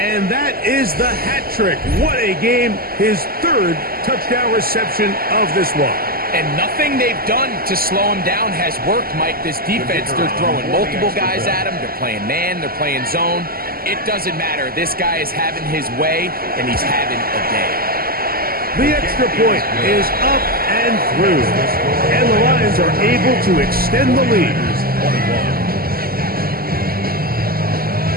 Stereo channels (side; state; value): left; late; 0.43 ms